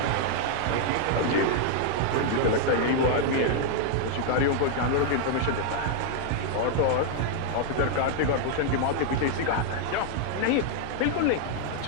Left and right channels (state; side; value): different; both; correlation 0.00